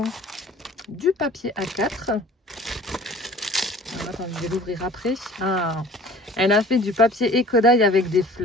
du papier A4. Alors, attends, je vais l'ouvrir après. Ah, elle a fait du papier écodaille avec des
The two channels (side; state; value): both; normal; correlation 0.48